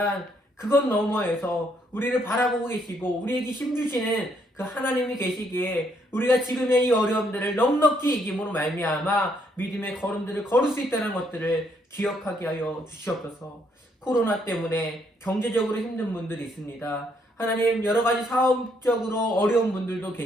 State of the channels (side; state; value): both; normal; correlation 0.71